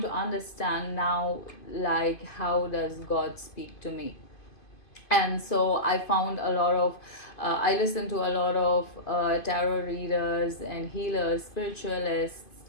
to understand now, like, how does God speak to me? And so I found a lot of I listened to a lot of tarot readers and healers, spiritualists,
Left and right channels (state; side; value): late; right; 2.5 ms